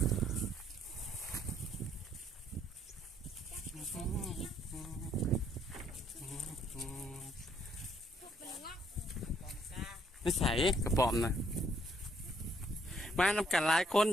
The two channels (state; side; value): normal; both; correlation 0.68